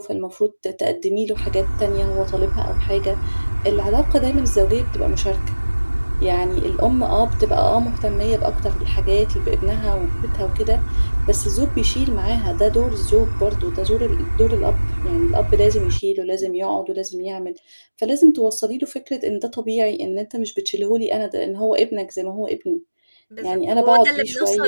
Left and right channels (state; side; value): inverted; both; correlation -1.00